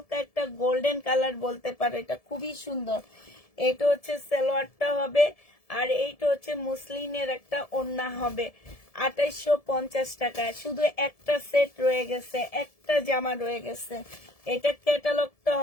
একটা গোল্ডেন কালার বলতে পারো, এটা খুবই সুন্দর। এটা হচ্ছে সালোয়ারটা হবে, আর এইটা হচ্ছে মুসলিনের একটা ওড়না হবে। 2850 টাকায় শুধু একটা সেট রয়ে গেছে, একটা জামা রয়ে গেছে। এটা ক্যাটালগটা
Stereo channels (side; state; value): right; late; 1.7 ms